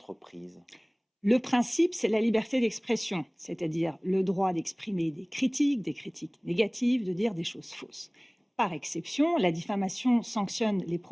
Le principe, c'est la liberté d'expression, c'est-à-dire le droit d'exprimer des critiques négatives, de dire des choses fausses. Par exception, la diffamation sanctionne les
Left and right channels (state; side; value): identical; both; correlation 1.00